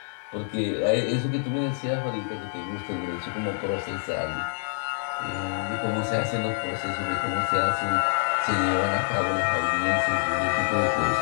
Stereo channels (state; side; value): silent; right; 56 dB below the other